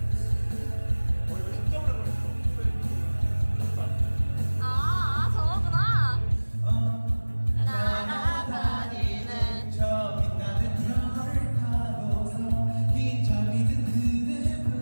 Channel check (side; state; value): both; inverted; correlation -1.00